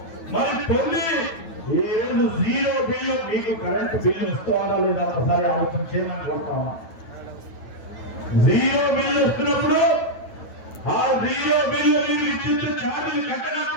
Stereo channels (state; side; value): late; right; 9.2 ms